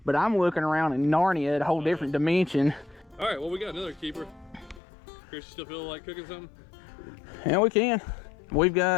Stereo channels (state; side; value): drops out; right; at 4.8 s